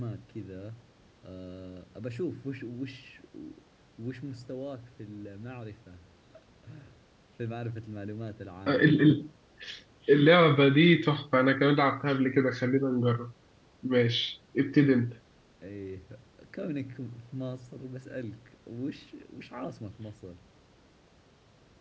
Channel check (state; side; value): identical; both; correlation 1.00